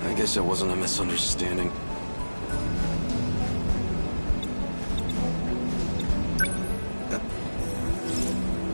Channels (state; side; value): inverted; both; correlation -1.00